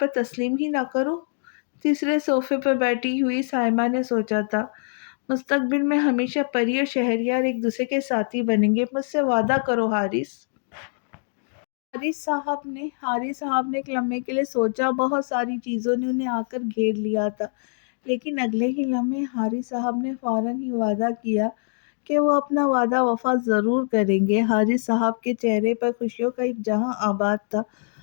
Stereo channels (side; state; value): right; silent; digital silence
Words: تسلیم ہی نہ کروں؟ تیسرے صوفے پر بیٹھی ہوئی سائمہ نے سوچا تھا۔ مستقبل میں ہمیشہ پری اور شہریار ایک دوسرے کے ساتھی بنیں گے، مجھ سے وعدہ کرو حارث۔ حارث صاحب نے ایک لمحے کے لیے سوچا۔ بہت ساری چیزوں نے انہیں آ کر گھیر لیا تھا، لیکن اگلے ہی لمحے حارث صاحب نے فوراً ہی وعدہ کیا کہ وہ اپنا وعدہ وفا ضرور کریں گے۔ حارث صاحب کے چہرے پر خوشیوں کا ایک جہاں آباد تھا۔